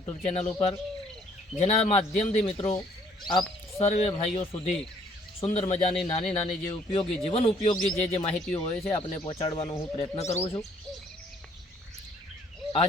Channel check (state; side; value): normal; both; correlation 0.63